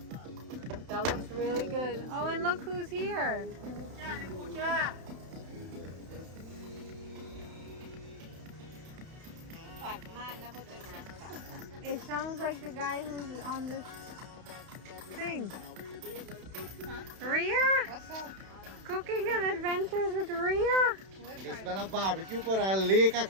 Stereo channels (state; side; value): late; left; 31 ms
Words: That looks really good. Oh, and look who's here. It sounds like the guy who's on this thing. Ria? What's up? Cooking and adventures with Ria? It's been a barbecue for a lake a